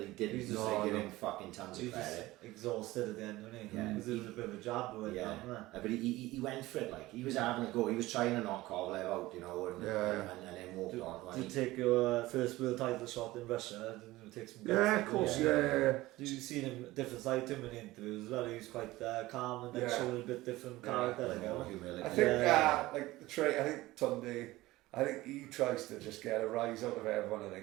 he didn't. He's just give him fucking tons of credit. Exhausted at the end, wasn't he? Yeah. Because it was a bit of a jab with but he went for it, like, he was having a go, he was trying to knock Kovalev out, you know, and then walked on. Did you take your first world title shot in Russia? Didn't you take some guts? Yeah, of course, yeah. Did you see him, different side to him in interviews as well? He was quite calm and then showing a bit different character. I think, like, I think Tunde, I think he tries to just get a rise out of everyone, I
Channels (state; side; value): quieter; left; 18.3 dB